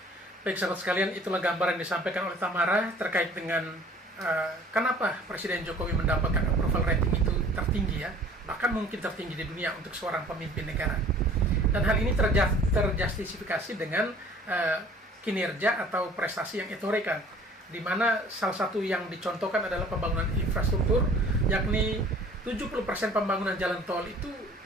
Baik sahabat sekalian, itulah gambaran yang disampaikan oleh Tamara terkait dengan kenapa Presiden Jokowi mendapatkan approval rating itu tertinggi ya, bahkan mungkin tertinggi di dunia untuk seorang pemimpin negara. Dan hal ini terjustifikasi dengan kinerja atau prestasi yang ditorekan, di mana salah satu yang dicontohkan adalah pembangunan infrastruktur, yakni 70% pembangunan jalan tol itu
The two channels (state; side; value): normal; both; correlation 0.51